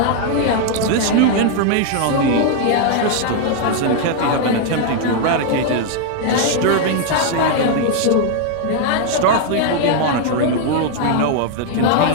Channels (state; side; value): different; both; correlation 0.00